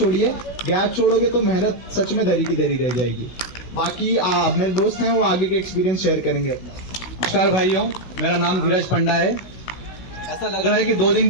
गैप छोड़ोगे तो मेहनत सच में धरी की धरी रह जाएगी। बाकी मेरे दोस्त हैं, वो आगे के एक्सपीरियंस शेयर करेंगे। नमस्कार भाइयों, मेरा नाम धीरज पंडा है। ऐसा लग रहा है कि 2 दिन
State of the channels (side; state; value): right; late; 16 ms